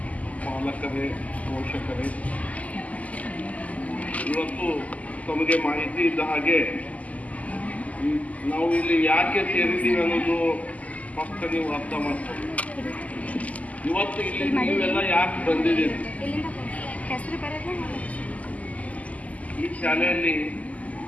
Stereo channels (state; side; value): late; right; 0.073 ms